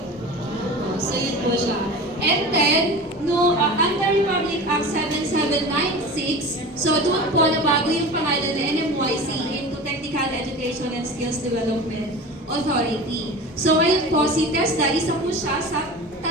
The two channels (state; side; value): normal; both; correlation 0.33